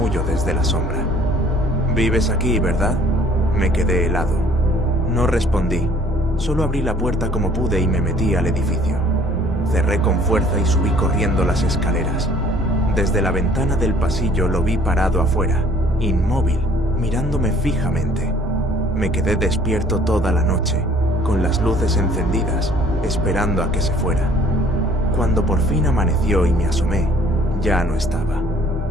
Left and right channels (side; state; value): both; normal; correlation 0.55